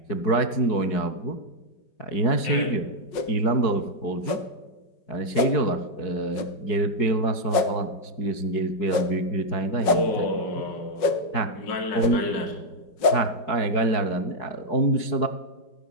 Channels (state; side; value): late; right; 4.7 ms